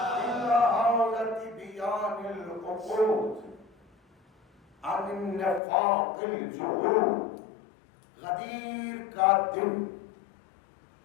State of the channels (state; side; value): drops out; right; at 5.6 s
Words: عن النفاق الجحود، غدیر کا دن